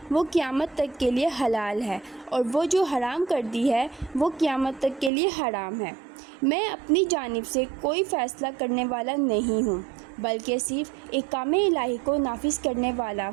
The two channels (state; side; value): drops out; left; at 5.1 s